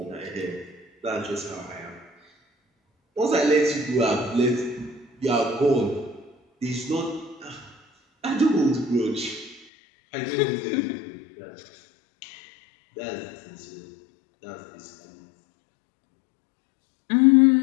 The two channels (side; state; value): right; drops out; at 9.7 s